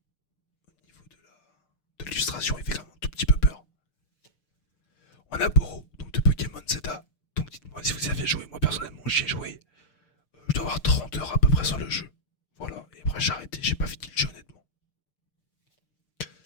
Au niveau de l'illustration, il fait quand même un tout petit peu peur. On a Boro, donc de Pokémon Zeta. Donc dites-moi si vous y avez joué. Moi personnellement, j'y ai joué. Je dois avoir 30 heures à peu près sur le jeu. Voilà, et après j'ai arrêté, j'ai pas fini le jeu honnêtement.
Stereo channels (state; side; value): late; right; 6.7 ms